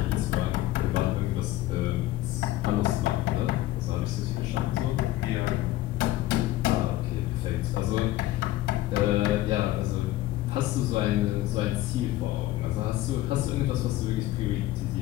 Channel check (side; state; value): right; quieter; 15.8 dB